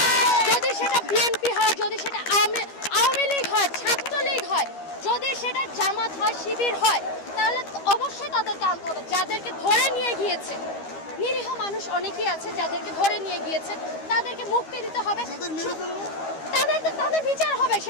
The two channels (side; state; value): right; late; 13 ms